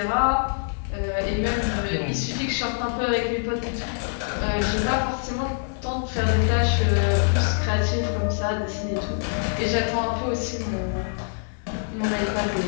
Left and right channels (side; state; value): right; silent; digital silence